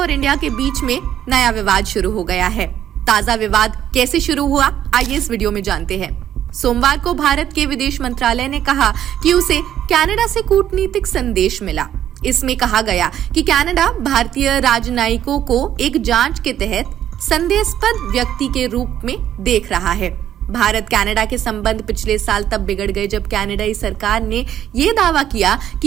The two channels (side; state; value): left; quieter; 10.8 dB